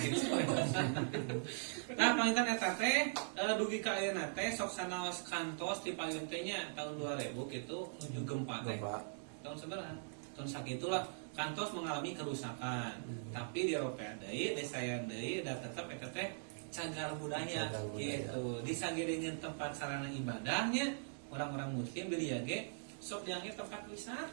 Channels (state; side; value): silent; left; digital silence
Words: Nah, pangitan eta teh dugi ka ayeuna teh sok sanaos kantos di payun teh nya tahun 2000 kitu nuju gempa teh. Tahun sabaraha? Tahun sakitulah kantos mengalami kerusakan. Tapi di Eropa deui, di saya deui da tetep eta teh cagar budaya gitu. Di sagedeungeun tempat sarana ibadahnya orang-orang muslim beli ge sok dianggap tempat